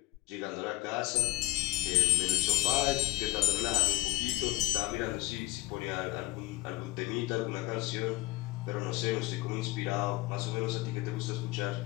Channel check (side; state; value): right; quieter; 18.1 dB